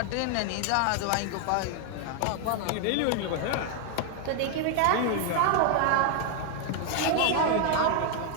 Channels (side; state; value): both; different; correlation 0.00